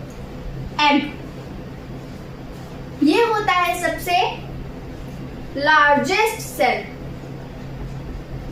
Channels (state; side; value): identical; both; correlation 1.00